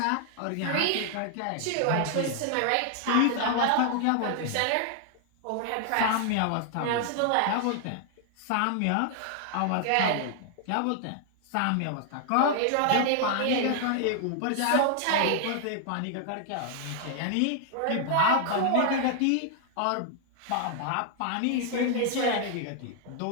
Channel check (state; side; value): different; both; correlation 0.00